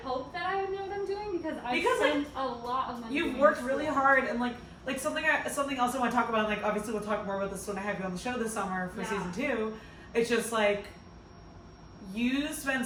that I would know what I'm doing because I spent a lot of money. You've worked really hard and like something else I want to talk about. Like obviously we'll talk more about this when I have you on the show this summer for season 2. It's just like you spend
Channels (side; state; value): both; identical; correlation 1.00